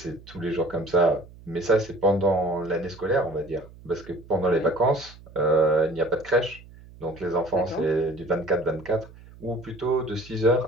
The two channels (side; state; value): right; noise; hum, 21 dB below the sound